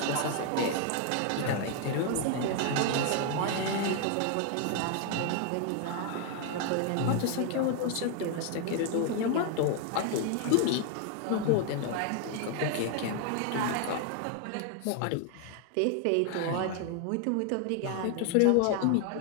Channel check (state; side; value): different; both; correlation 0.00